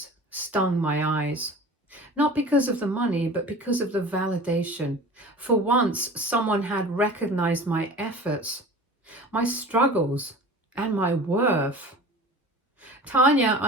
stung my eyes. Not because of the money, but because of the validation. For once, someone had recognized my efforts, my struggles, and my worth. Tanya,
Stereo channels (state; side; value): normal; both; correlation 0.39